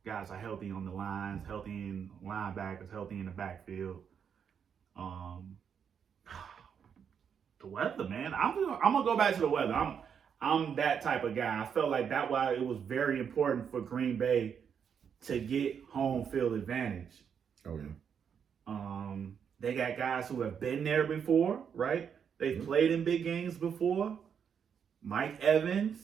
guys are healthy on the lines, healthy in linebackers, healthy in the backfield. The weather, man. I'm gonna go back to the weather. I'm that type of guy. I felt like that's why it was very important for Green Bay to get home field advantage. Oh yeah. They got guys who have been there before, right? They've played in big games before. Mike Evans,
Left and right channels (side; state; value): left; quieter; 7.4 dB